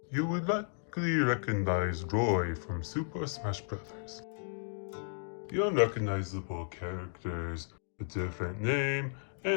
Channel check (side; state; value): right; silent; digital silence